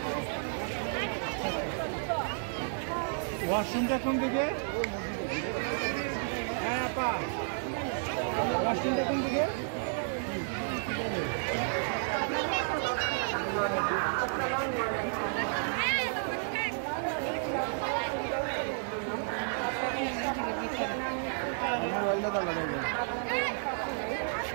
ওয়াশরুমটা কোন দিকে? হ্যাঁ আপা, ওয়াশরুমটা কোন দিকে?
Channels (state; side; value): silent; left; digital silence